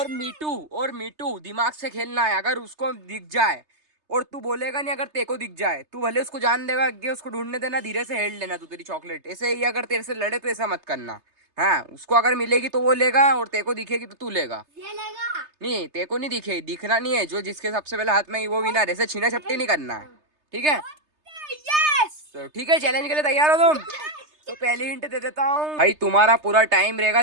मीटू दिमाग से खेलना है। अगर उसको दिख जाए और तू बोलेगा नहीं, अगर तेरे को दिख जाए तू भले उसको जान देगा आगे, उसको ढूंढने देना, धीरे से हेड लेना तू तेरी चॉकलेट। ऐसे ही अगर तेरे से लड़े तो ऐसा मत करना। हाँ, उसको अगर मिलेगी तो वो लेगा और तेरे को दिखेगी तो तू लेगा। ये लेगा नहीं, तेरे को नहीं दिखेगी, दिखना नहीं है। जो जिसके सबसे पहले हाथ में ही वो विनर। ऐसे छीना झपटी नहीं करना है, ठीक है? तो ठीक है, चैलेंज के लिए तैयार हो तुम? तो पहली हिंट दे देता हूँ भाई, तुम्हारा पूरा टाइम रहेगा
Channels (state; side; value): late; left; 3.3 ms